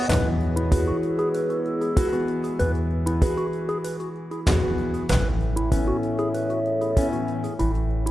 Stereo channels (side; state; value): both; normal; correlation 0.93